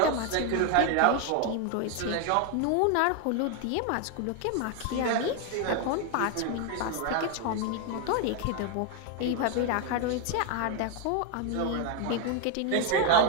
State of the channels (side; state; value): both; different; correlation 0.01